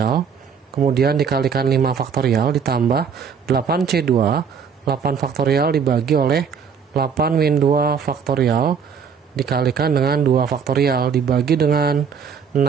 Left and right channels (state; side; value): quieter; left; 6.7 dB